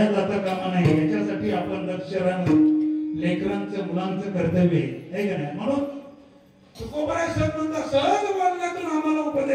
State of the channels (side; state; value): both; identical; correlation 1.00